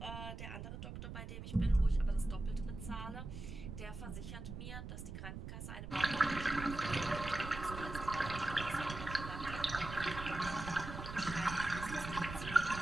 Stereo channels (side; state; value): right; noise; rumble, 8 dB below the sound